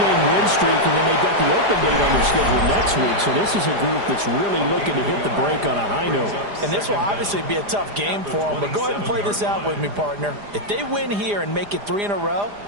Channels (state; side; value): late; left; 4.9 ms